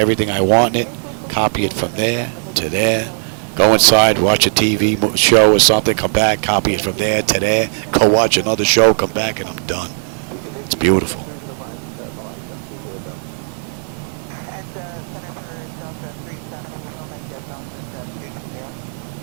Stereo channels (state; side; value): silent; left; digital silence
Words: I want in it, copy it from there to there, go inside, watch a TV show or something, come back, copy it from there to there, go watch another show, come back, and I'm done. It's beautiful.